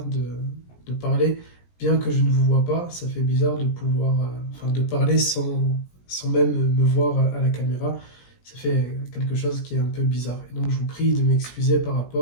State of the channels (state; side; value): late; right; 17 ms